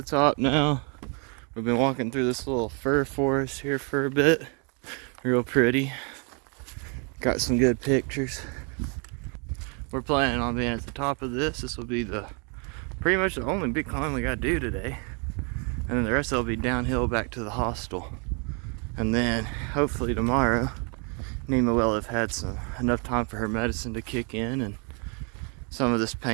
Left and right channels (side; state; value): left; quieter; 36.2 dB